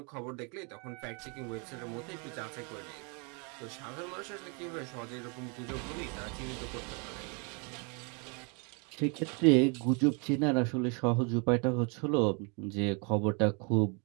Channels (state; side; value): quieter; left; 34.1 dB